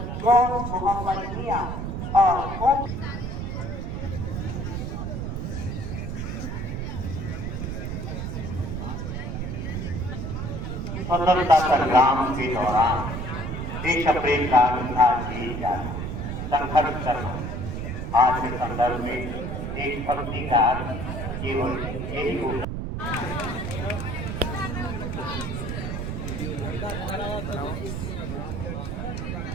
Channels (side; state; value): right; noise; rumble, 4 dB below the sound